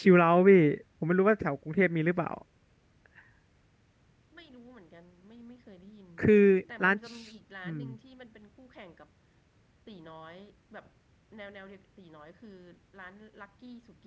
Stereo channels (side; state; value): both; identical; correlation 1.00